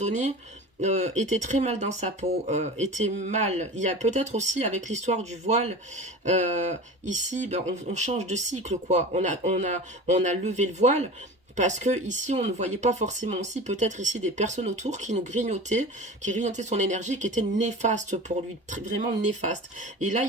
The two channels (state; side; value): normal; both; correlation 0.34